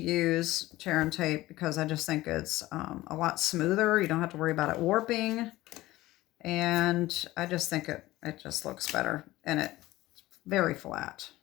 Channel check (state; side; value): quieter; right; 17.4 dB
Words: tear and tape because I just think it's a lot smoother. You don't have to worry about it warping. And I just think it just looks better, and it's very flat.